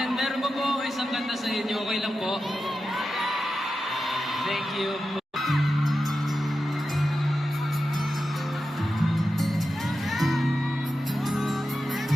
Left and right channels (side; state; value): both; normal; correlation 0.91